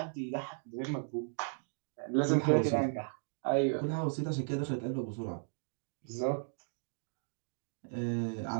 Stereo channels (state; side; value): silent; left; digital silence